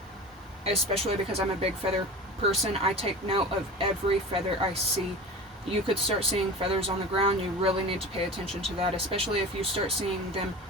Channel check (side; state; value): both; normal; correlation 0.34